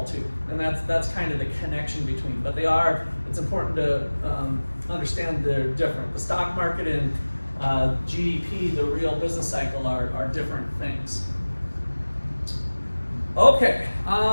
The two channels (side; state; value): both; inverted; correlation -1.00